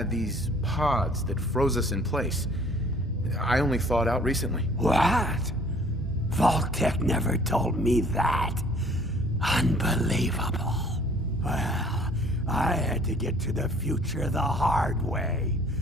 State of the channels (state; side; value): normal; both; correlation 0.55